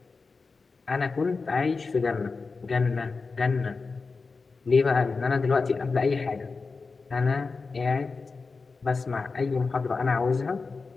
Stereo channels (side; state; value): right; quieter; 4.3 dB